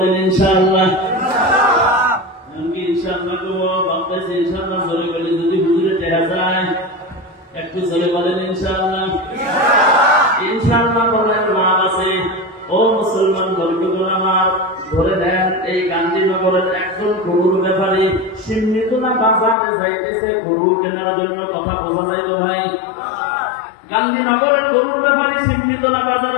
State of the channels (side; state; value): right; drops out; at 19.6 s